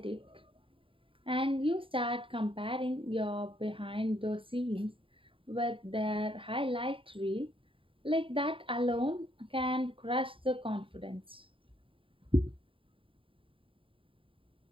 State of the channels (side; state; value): left; late; 0.25 ms